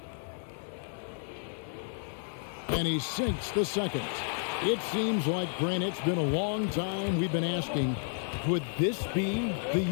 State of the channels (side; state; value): right; silent; 57 dB below the other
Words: And he sinks the second. It seems like, Grant, it's been a long time we've been asking, could this be